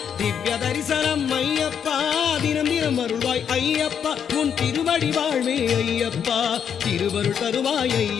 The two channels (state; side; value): quieter; right; 8.0 dB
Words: திவ்ய தரிசனம் ஐயப்பா தினம் தினம் அருள்வாய் ஐயப்பா உன் திருவடி வாழ்வே ஐயப்பா திருவருள் தருவாய்